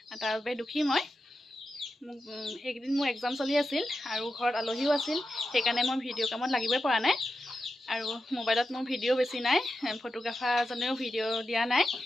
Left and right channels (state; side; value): normal; both; correlation 0.90